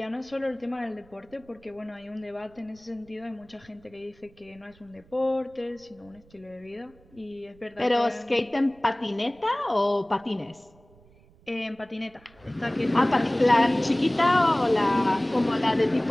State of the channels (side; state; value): right; noise; rumble, 28 dB below the sound